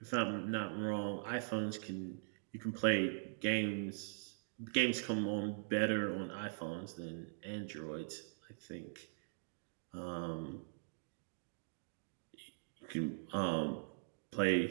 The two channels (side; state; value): left; silent; digital silence